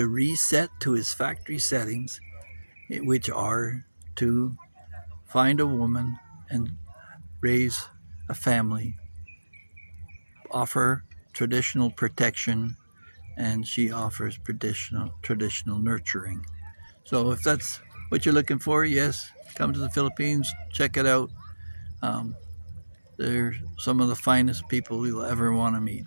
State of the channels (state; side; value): inverted; both; correlation -1.00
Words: reset to his factory settings, which are to find a woman and raise a family, offer traditional protection, and she offers traditional nurturing. So if that's what you're looking for, yes, come to the Philippines, check it out. Um, they're some of the finest people you'll ever want to meet.